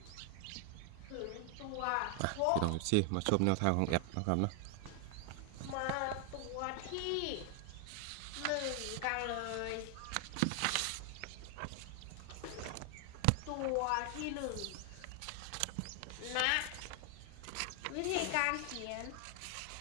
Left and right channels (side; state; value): both; different; correlation 0.00